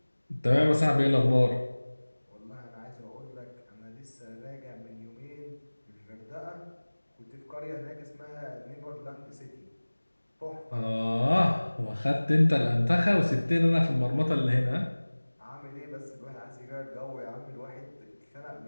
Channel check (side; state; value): both; inverted; correlation -1.00